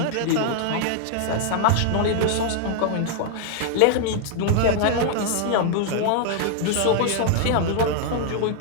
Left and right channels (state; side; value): different; both; correlation 0.00